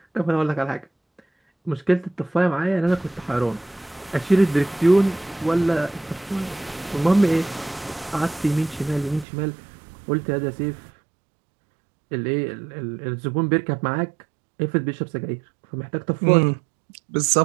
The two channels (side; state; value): left; drops out; at 9.2 s